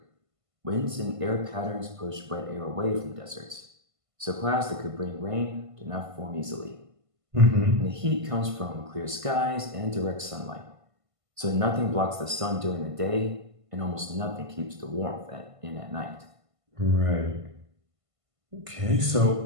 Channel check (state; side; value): late; left; 1.5 ms